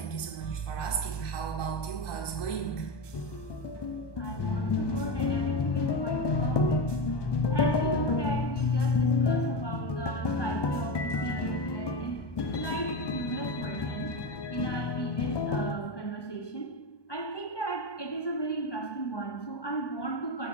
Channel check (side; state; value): right; late; 1.2 ms